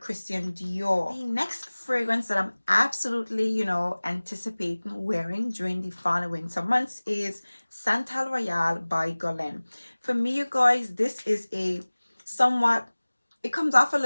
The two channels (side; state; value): both; inverted; correlation -1.00